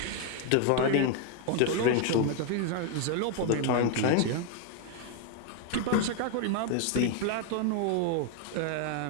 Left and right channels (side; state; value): both; different; correlation 0.00